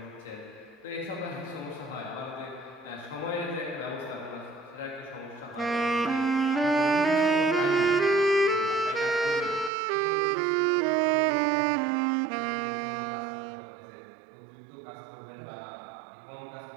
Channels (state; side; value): drops out; left; at 9.7 s